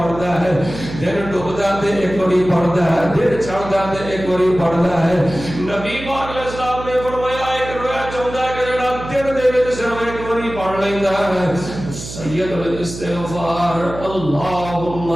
ہے دن ڈوبدا تے ایک بڑی پڑھدا ہے دن چڑھدا تے ایک بڑی پڑھدا ہے نبی پاک علیہ السلام نے فرمایا ایک رویا چاہندا ہے کہ جیڑا دن دے وچ صرف ایک بڑی پڑھ لیندا ہے سید الاستغفار اللهم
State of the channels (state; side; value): noise; right; hum, 11 dB below the sound